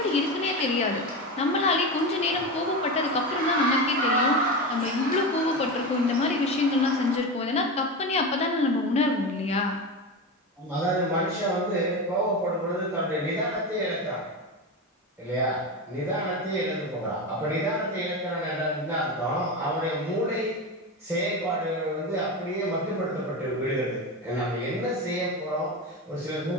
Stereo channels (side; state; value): both; normal; correlation 0.20